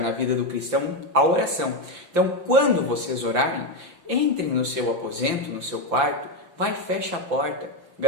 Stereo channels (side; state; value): left; late; 5.8 ms